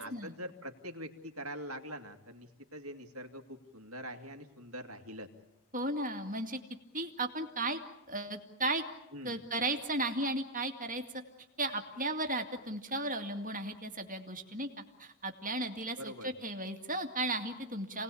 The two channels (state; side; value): normal; both; correlation -0.02